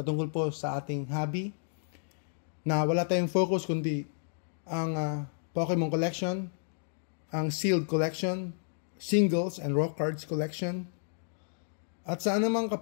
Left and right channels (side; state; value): right; silent; digital silence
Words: po sa ating hobby, na wala tayong focus kundi ang Pokemon collection, ang sealed collection, singles and raw cards collection, at sa anumang